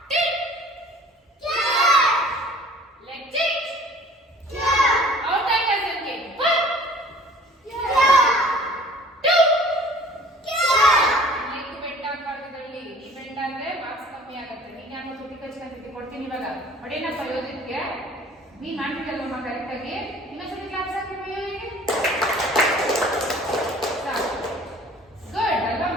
ಕೊಡ್ತೀನಿ ಇವಾಗ ಹೊಡೆನಪ್ಪ ಯೋಜಿತ್ಗೆ ನೀನ್ ಮಾಡ್ತಿದ್ದಲ್ಲಮ್ಮ ಕರೆಕ್ಟ್ ಆಗಿ ಇನ್ನೊಂದ್ಸತಿ ಕ್ಲಾಸ್ ಹಾಕಿ ಗುಡ್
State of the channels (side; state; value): both; normal; correlation 0.50